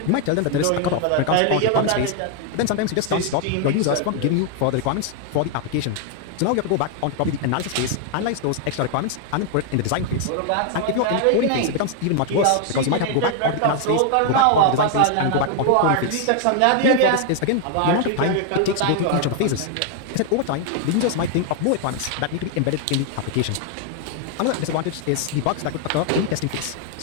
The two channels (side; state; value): both; different; correlation 0.00